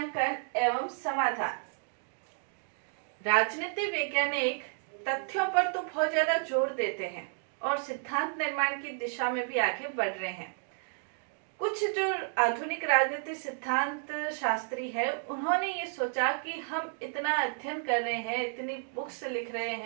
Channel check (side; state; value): left; silent; 57 dB below the other